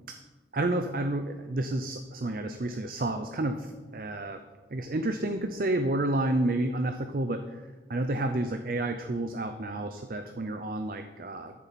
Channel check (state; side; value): normal; both; correlation 0.54